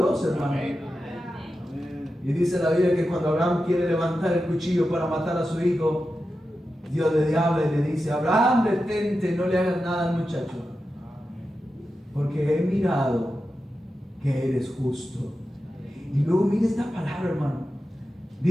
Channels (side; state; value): both; normal; correlation 0.91